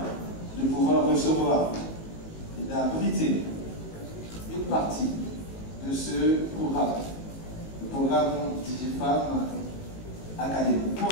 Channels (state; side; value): late; right; 18 ms